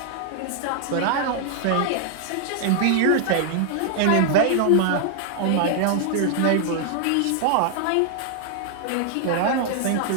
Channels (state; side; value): different; both; correlation -0.01